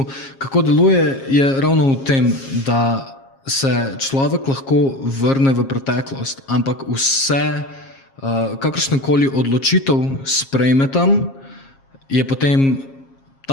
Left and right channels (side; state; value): right; late; 7.4 ms